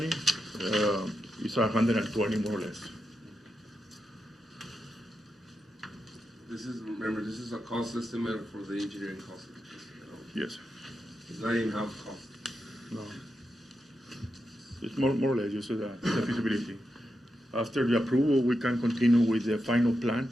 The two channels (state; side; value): normal; both; correlation 0.87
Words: is 120 more or less. Remember, this is a cost estimate for the engineering cost. Yes. It's not even house cost. No. It's more or less just the feasibility. After the approval, we can continue with the final plan